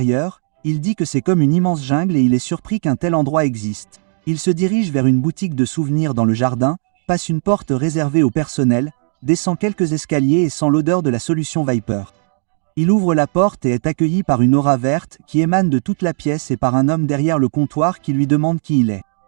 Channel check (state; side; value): silent; left; 57 dB below the other